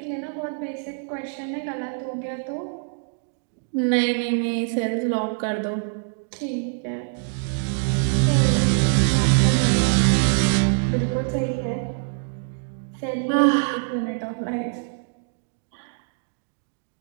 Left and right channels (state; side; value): silent; left; 62 dB below the other